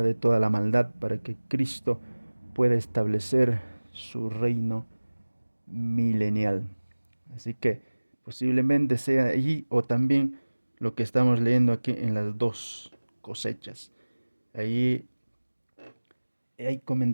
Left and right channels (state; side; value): inverted; both; correlation -1.00